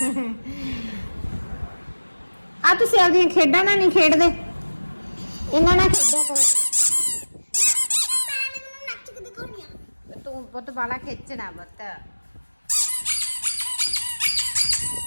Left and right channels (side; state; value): both; inverted; correlation -1.00